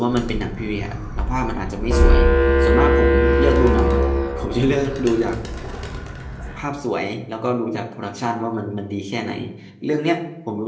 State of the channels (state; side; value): identical; both; correlation 1.00